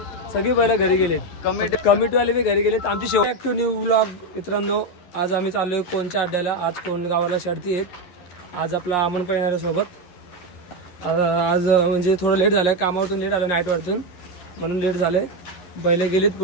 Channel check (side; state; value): right; late; 11 ms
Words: सगळी पहिला घरी गेलेत, कमिटीवाले बी घरी गेलेत. आमची शेवट ॲक्टिव्ह न्यू व्लॉग. मित्रांनो, आज आम्ही चाललोय कोणच्या अड्ड्याला. आज कोणगावाला शर्ती आहेत. आज आपला अमन पण येणार आहे सोबत. आज म्हणजे थोडं लेट झालंय, कामावरतून लेट आलं, नाईटवरतून, म्हणून लेट झालंय. बैलं गेलीत